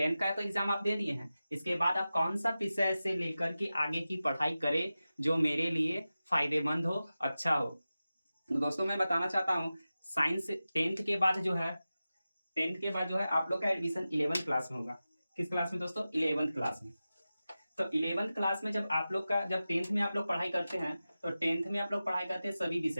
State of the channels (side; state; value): both; inverted; correlation -0.94